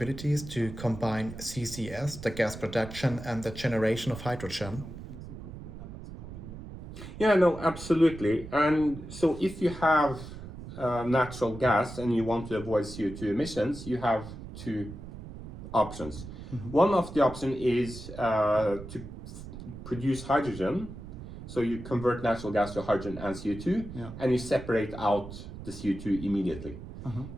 to combine CCS, the gas production, and the generation of hydrogen? In Zukunft miteinander zu kombinieren? Yeah, no, absolutely. And so if you have natural gas and you want to avoid CO2 emissions, you have two options. One of the option is to produce hydrogen. So you convert natural gas to hydrogen and CO2, and you separate out the CO2 immediately.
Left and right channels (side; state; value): right; noise; rumble, 12 dB below the sound